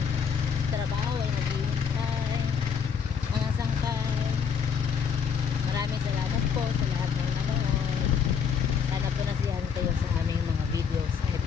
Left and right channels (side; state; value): right; quieter; 6.7 dB